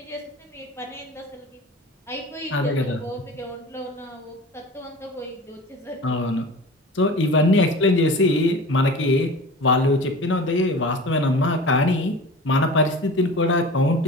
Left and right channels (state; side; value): normal; both; correlation 0.37